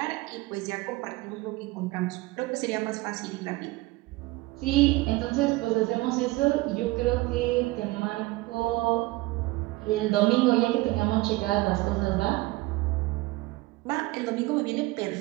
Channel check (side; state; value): left; quieter; 20.7 dB